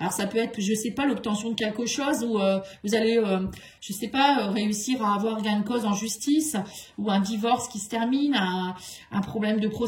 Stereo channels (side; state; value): both; identical; correlation 1.00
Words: ça peut être, je ne sais pas, l'obtention de quelque chose ou vous allez, je ne sais pas, réussir à avoir gain de cause en justice ou un divorce qui se termine, un problème de